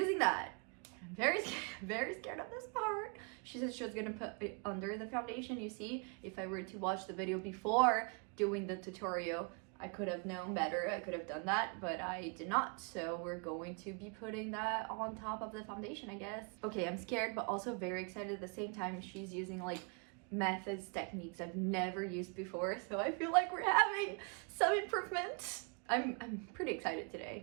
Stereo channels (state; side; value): quieter; left; 34.5 dB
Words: that. I'm very scared of this part. She said she was gonna put it under the foundation. You see, if I were to watch the video before doing the tutorial, I could have known better. I could have done that, but I did not. So we're going to be putting that on top of the foundation, I guess. Okay, I'm scared, but also very excited at the same time. She's using like methods, techniques I've never used before. So I feel like we're having some improvements. I'm pretty excited